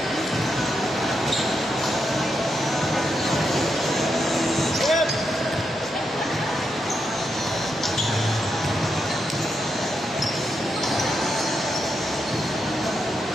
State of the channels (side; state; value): both; normal; correlation 0.83